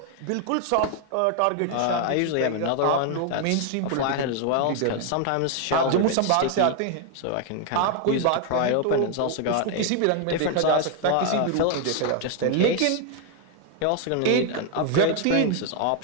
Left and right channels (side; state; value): both; different; correlation 0.00